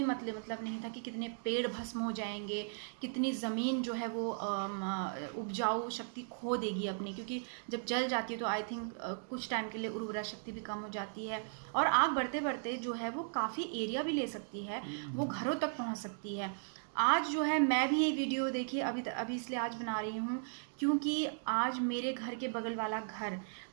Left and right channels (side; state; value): left; silent; digital silence